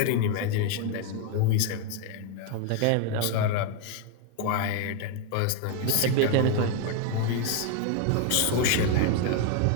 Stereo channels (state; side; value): different; both; correlation 0.01